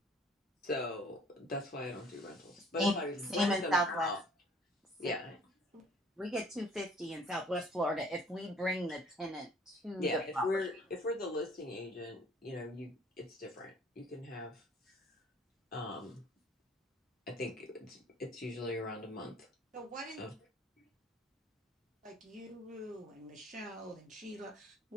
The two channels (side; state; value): both; normal; correlation 0.54